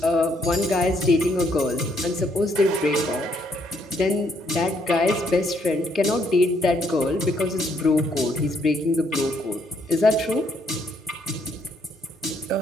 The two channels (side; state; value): both; normal; correlation 0.71